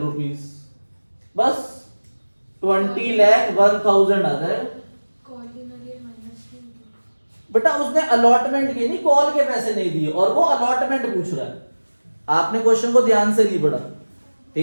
बस 20 लाख 1,000 आ जाएगा। बेटा उसने अलॉटमेंट के नहीं, कॉल के पैसे नहीं दिए और वो अलॉटमेंट पूछ रहा है। आपने क्वेश्चन को ध्यान से नहीं पढ़ा,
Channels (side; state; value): both; inverted; correlation -1.00